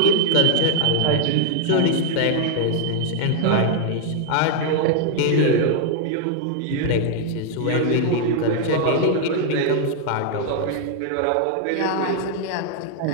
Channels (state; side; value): different; both; correlation 0.00